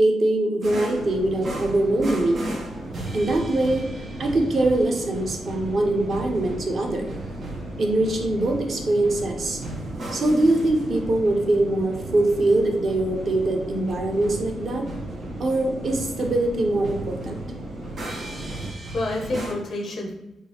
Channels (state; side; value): normal; both; correlation 0.88